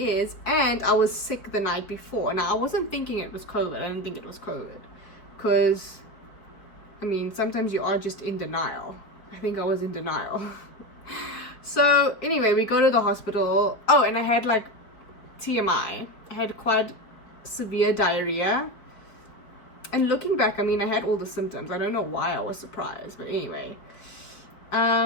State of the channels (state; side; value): late; right; 4.4 ms